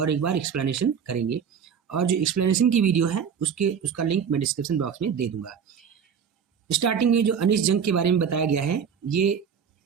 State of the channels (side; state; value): left; quieter; 7.3 dB